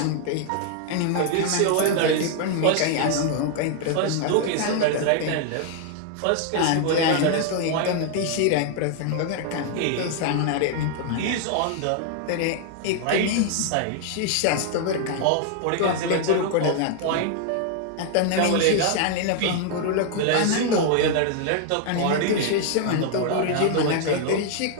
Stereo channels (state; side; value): different; both; correlation 0.00